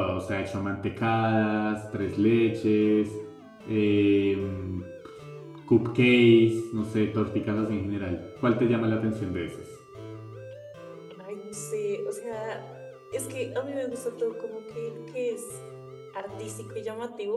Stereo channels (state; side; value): identical; both; correlation 1.00